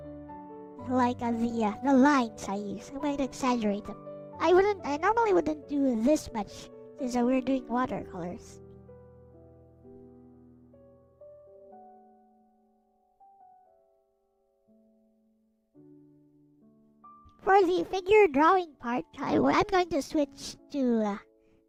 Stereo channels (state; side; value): identical; both; correlation 1.00